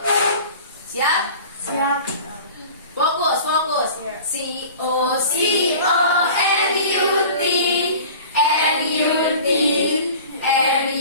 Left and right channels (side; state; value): both; inverted; correlation -0.41